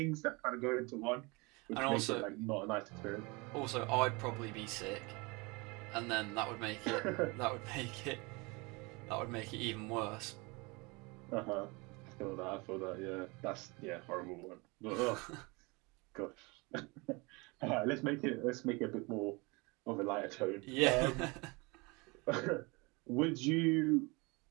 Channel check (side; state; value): left; quieter; 26.9 dB